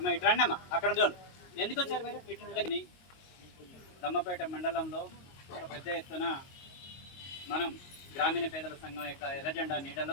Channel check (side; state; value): right; late; 22 ms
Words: ఇటు రండి అమ్మ, అక్కడ చూడు. ఎందుకు వచ్చారు మీరు? ఇటు దమ్మపేట మండలంలో ఒక పెద్ద ఎత్తున మనం గ్రామీణ పేదల సంఘం యొక్క ఎర్రజెండా